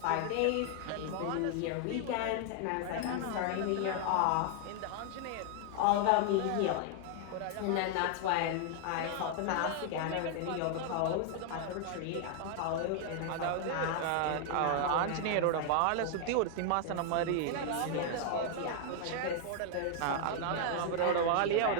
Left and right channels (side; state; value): both; different; correlation 0.00